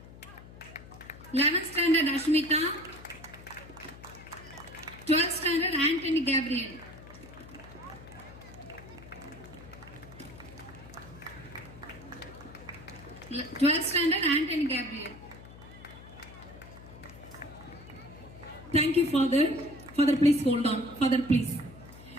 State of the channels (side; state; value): left; noise; hum, 17 dB below the sound